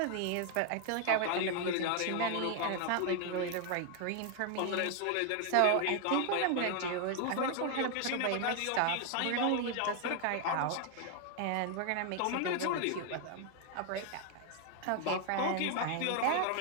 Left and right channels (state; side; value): different; both; correlation 0.00